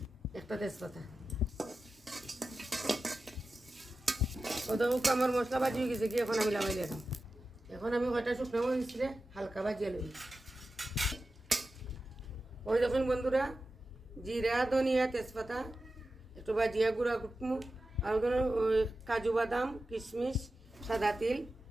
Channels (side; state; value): both; normal; correlation 0.93